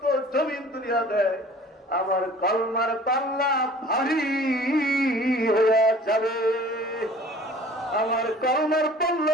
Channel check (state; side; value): normal; both; correlation 0.48